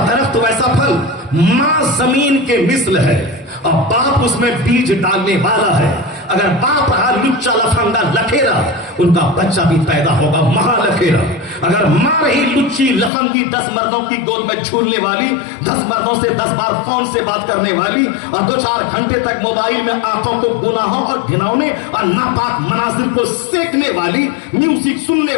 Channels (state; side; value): drops out; right; at 13.1 s